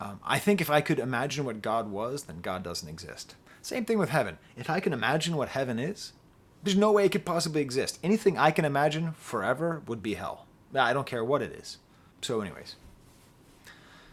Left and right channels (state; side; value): identical; both; correlation 1.00